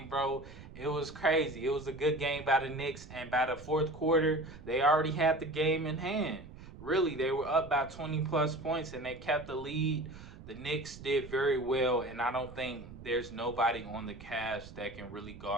bro, it was crazy. It was a good game by the Knicks, and by the fourth quarter, they already had the game in hand. Really, they were up by 20 plus points and they kept the lead. The Knicks did very well, and I don't think there's nobody on the Cavs that can really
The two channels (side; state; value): right; noise; rumble, 16 dB below the sound